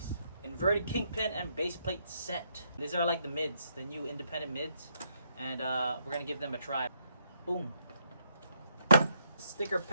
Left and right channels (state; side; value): inverted; both; correlation -0.75